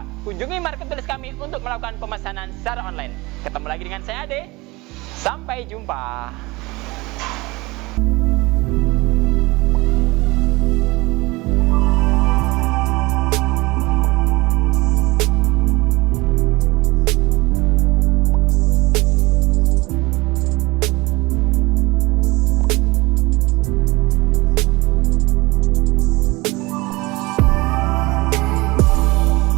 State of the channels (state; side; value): quieter; left; 22.7 dB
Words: kunjungi marketplace kami untuk melakukan pemesanan secara online. Ketemu lagi dengan saya Ade. Sampai jumpa.